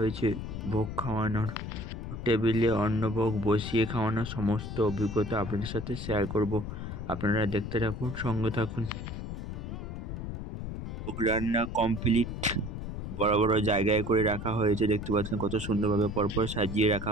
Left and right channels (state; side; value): noise; left; rumble, 6 dB below the sound